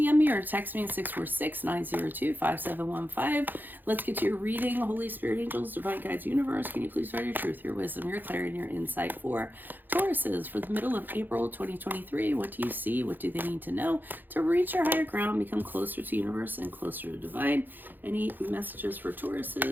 me, or text me at 646-902-5715. Let's get to your reading. Holy Spirit, angels, divine guides, universe, can you please provide your truth, your wisdom, your clarity, and your insight for Tauruses for the middle of April 2023? What do you see? What do they need to know to reach your higher ground, become closer to universe and closer to divine? Any messages for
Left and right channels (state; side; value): late; left; 0.089 ms